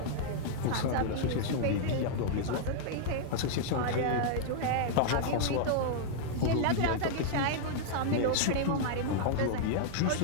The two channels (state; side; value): different; both; correlation -0.01